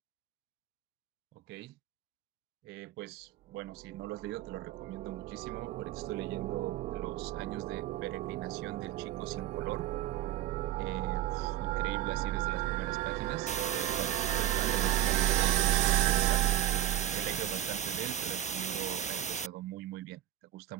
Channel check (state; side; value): quieter; left; 12.7 dB